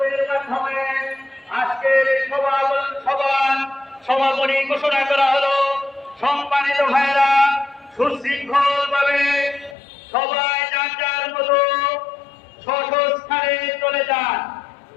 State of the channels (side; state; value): right; drops out; at 9.8 s